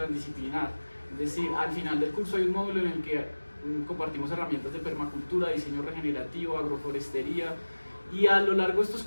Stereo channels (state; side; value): inverted; both; correlation -1.00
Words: Es decir, al final del curso hay un módulo en el que compartimos herramientas de permacultura, diseño regenerativo, agroforestería, y a lo largo de estos